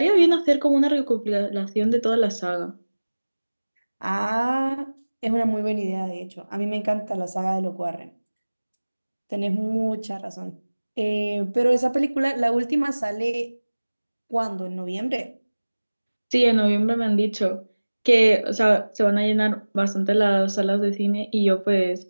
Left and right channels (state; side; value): inverted; both; correlation -1.00